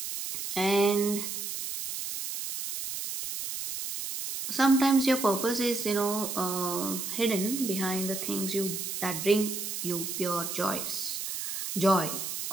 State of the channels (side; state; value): right; noise; hiss, 5 dB below the sound